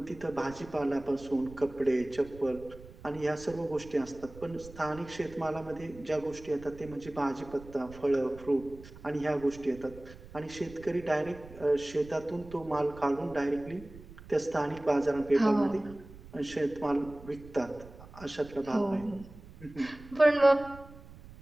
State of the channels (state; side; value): noise; right; rumble, 18 dB below the sound